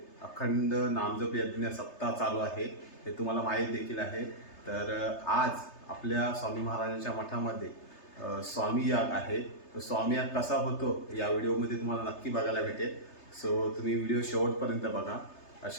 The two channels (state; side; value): late; right; 3.3 ms